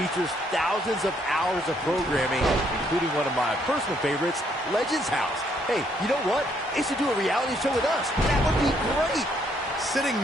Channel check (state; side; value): normal; both; correlation 0.70